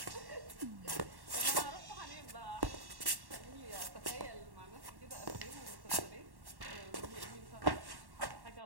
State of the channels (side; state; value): left; late; 1.1 ms